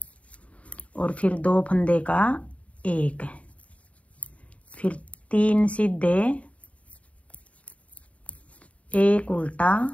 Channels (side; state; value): right; late; 0.066 ms